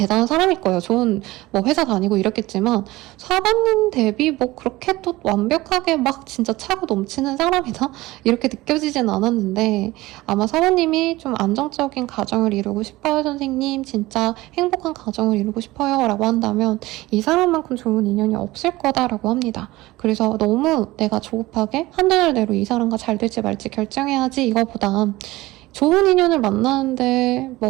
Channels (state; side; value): quieter; left; 18.9 dB